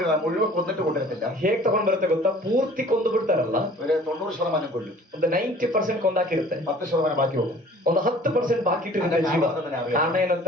മുഴുവൻ കൊന്നിട്ട് കൊണ്ടിരുന്നില്ല. ಹೇಗ್ ತಗೊಂಡ್ ಬರುತ್ತೆ ಗೊತ್ತಾ? ಪೂರ್ತಿ ಕೊಂದು ಬಿಡ್ತಾರಲ್ಲ, ഒരു 90% കൊല്ലും. ಒಂದು 90% ಕೊಂದಾಕಿರುತ್ತೆ, 10% ബാക്കി പോകും. ಒಂದು 10% ಬಾಕಿ ಇಟ್ಟಿರುತ್ತೆ ಜೀವ. ಕಾರಣ ಏನಂತ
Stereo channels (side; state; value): both; normal; correlation 0.49